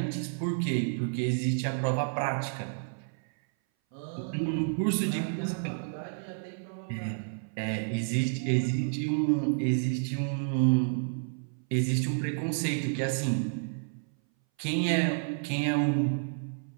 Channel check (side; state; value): left; silent; 58 dB below the other